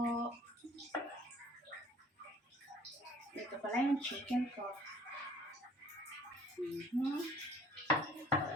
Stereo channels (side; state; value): both; normal; correlation 0.53